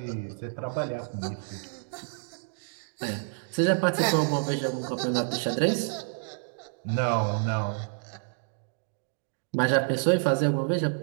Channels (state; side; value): silent; left; digital silence